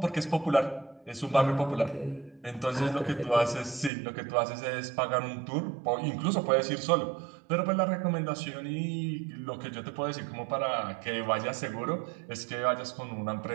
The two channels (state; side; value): drops out; left; at 3.9 s